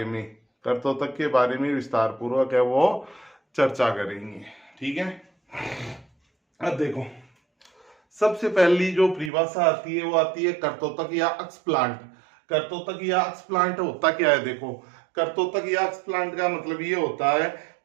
में, कर्तोतक के बारे में विस्तार पूर्वक है वो चर्चा करेंगे। ठीक है। अब देखो, सबसे पहली जो परिभाषा आती है वो आती है कर्तोतक या अक्ष प्लांट। कर्तोतक या अक्ष प्लांट होता क्या है? देखो, कर्तोतक या अक्ष प्लांट का मतलब ये होता है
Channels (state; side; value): drops out; left; at 9.3 s